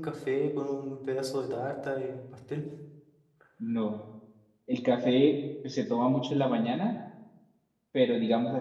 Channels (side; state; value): both; identical; correlation 1.00